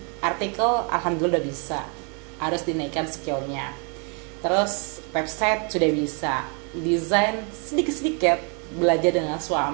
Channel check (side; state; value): left; quieter; 36.7 dB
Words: artikel alhamdulillah udah bisa, harus dinaikkan skillnya. Terus website sudah bisa, desain sedikit-sedikit belajar dengan